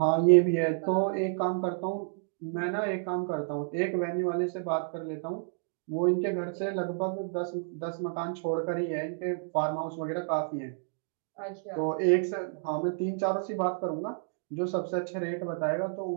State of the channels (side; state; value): left; silent; digital silence